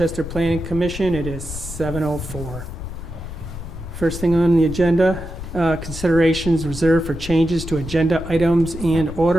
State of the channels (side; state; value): left; noise; rumble, 9 dB below the sound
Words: Planning Commission. It is 7:04. First thing on the agenda, considerations reserved for changes to agenda items and